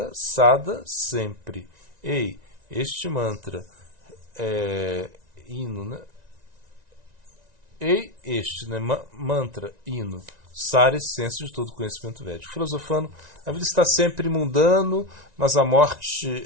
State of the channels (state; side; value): late; left; 1.9 ms